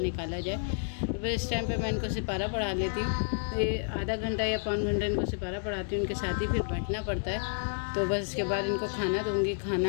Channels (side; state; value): right; silent; digital silence